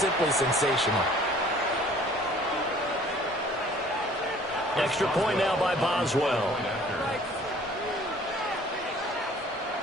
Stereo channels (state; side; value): normal; both; correlation 0.53